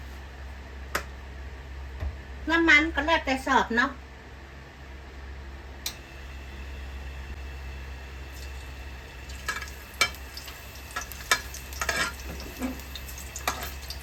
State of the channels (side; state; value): both; identical; correlation 1.00